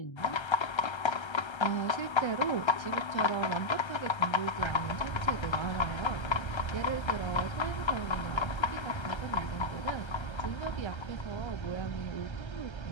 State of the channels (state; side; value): late; right; 1.3 ms